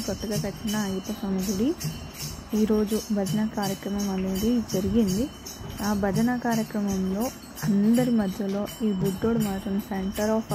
కొత్తగా కట్టిన అయ్యప్ప స్వామి గుడి. ఈరోజు భజన కార్యక్రమం అనేది జరిగింది. ఆ భజన కార్యక్రమంలో అందరి మధ్యలో ఈ బుద్ధుడు మాత్రం సెంటర్ ఆఫ్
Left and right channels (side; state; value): both; identical; correlation 1.00